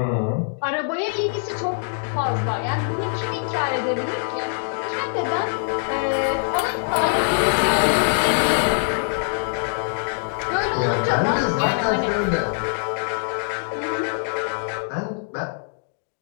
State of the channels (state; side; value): silent; right; digital silence